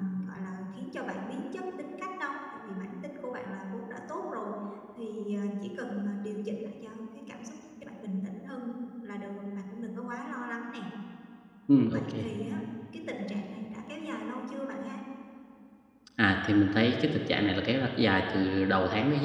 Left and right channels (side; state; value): both; identical; correlation 1.00